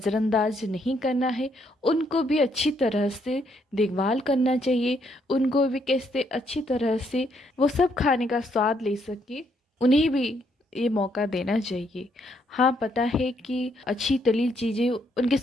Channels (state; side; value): normal; both; correlation 0.72